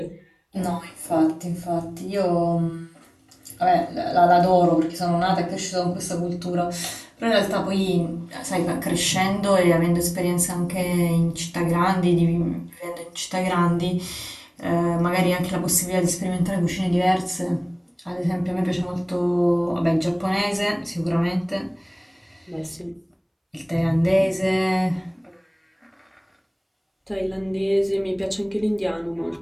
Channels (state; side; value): identical; both; correlation 1.00